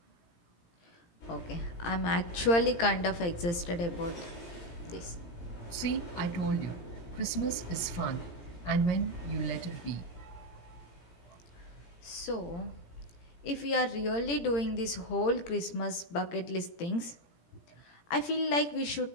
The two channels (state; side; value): late; right; 17 ms